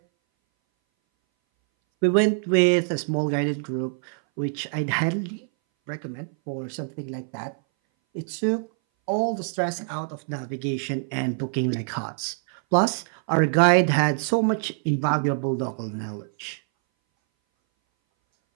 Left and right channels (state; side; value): silent; left; 59 dB below the other